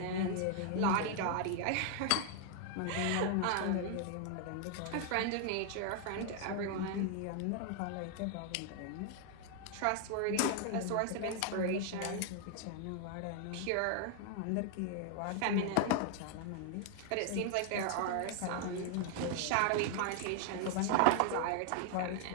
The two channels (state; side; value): different; both; correlation 0.00